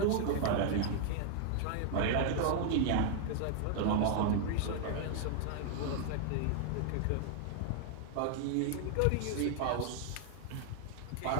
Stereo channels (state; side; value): different; both; correlation 0.00